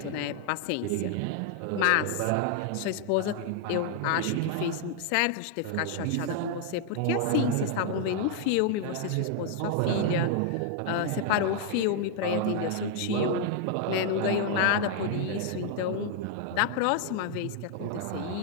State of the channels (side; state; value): both; different; correlation 0.00